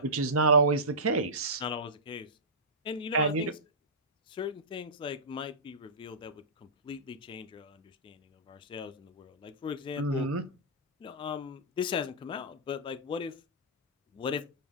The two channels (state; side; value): normal; both; correlation -0.19